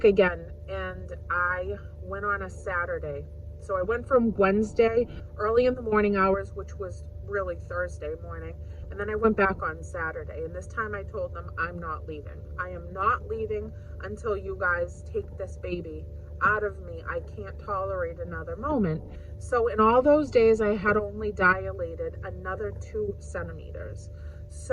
again. And I went on a Saturday. So I went from Wednesday, early in the morning hours, which was really Thursday morning, and then I went back on Saturday. And this time I told them, I'm not leaving. I am not leaving. until you guys take this baby out of me. I can't tolerate another moment. So in all those days, I had only dilated another 2 centimeters.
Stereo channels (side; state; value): both; identical; correlation 1.00